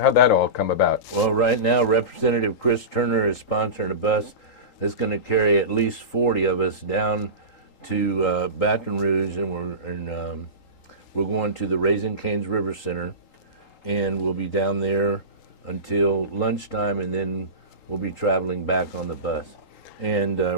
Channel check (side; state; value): right; late; 3.8 ms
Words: that all come about? Well, right now, Representative Chris Turner is sponsoring a bus that's going to carry at least 40 of us down to Baton Rouge, and we're going to the Raising Cane's River Center, and we'll be down there until lunchtime, and then we'll be traveling back on the bus, and